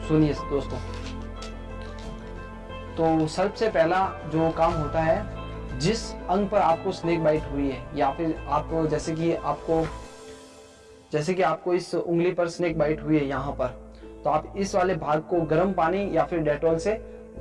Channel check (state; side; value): identical; both; correlation 1.00